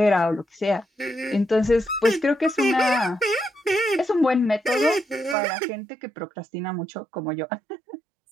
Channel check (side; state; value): left; drops out; at 5.4 s